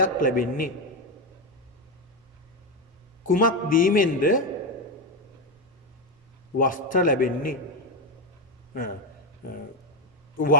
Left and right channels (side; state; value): both; normal; correlation 0.09